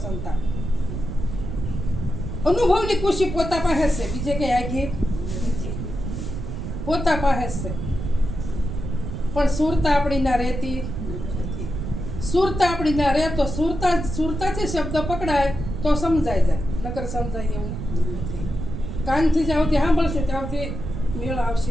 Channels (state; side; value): noise; right; rumble, 5 dB below the sound